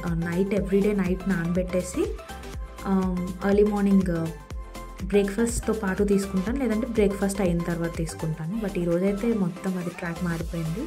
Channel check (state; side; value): identical; both; correlation 1.00